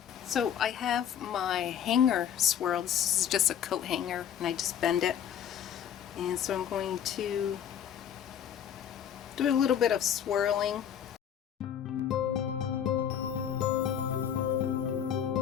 So I have my hanger swirled. This is just a coat hanger, and I just bend it. And so I'm going to do a little bit of swirling.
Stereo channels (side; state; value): right; quieter; 9.3 dB